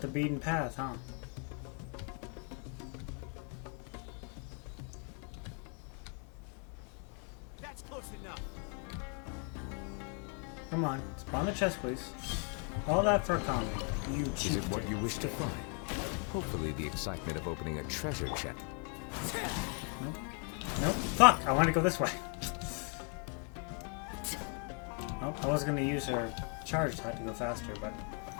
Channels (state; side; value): quieter; right; 39.9 dB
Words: the beaten path, huh? That's close enough. Come on, spawn the chest, please. All that for a comment. You cheat. Is it what you wish to find? Hopefully the excitement of opening a treasure chest. Nope. Nope. Fuck! I want to go this way. Oh, I was gonna use her charge to go faster, but